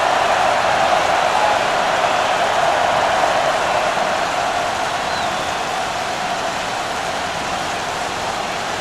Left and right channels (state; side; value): identical; both; correlation 1.00